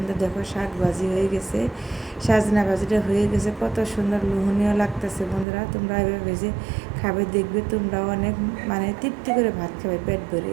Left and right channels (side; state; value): left; drops out; at 5.5 s